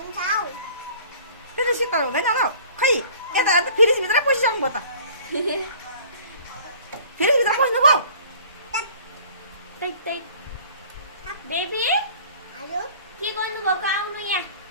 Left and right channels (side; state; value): both; inverted; correlation -0.49